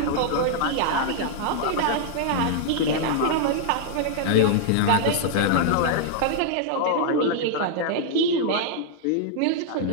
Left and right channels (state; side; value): different; both; correlation -0.01